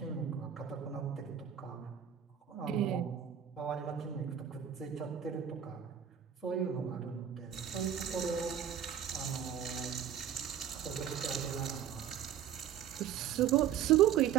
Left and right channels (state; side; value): quieter; left; 9.4 dB